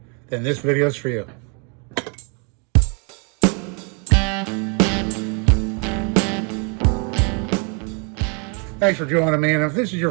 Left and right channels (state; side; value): quieter; left; 36.3 dB